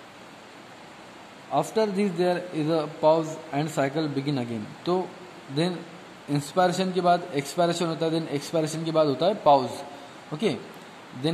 After this there is a pause and cycle begin again. तो देन इंस्पायरेशन के बाद एक्सपायरेशन होता है, देन एक्सपायरेशन के बाद होता है पॉज. ओके,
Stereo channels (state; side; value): identical; both; correlation 1.00